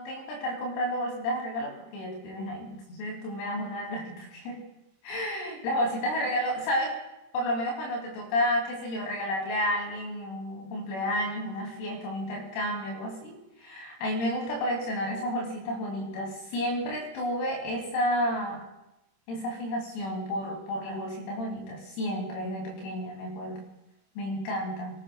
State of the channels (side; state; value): right; late; 26 ms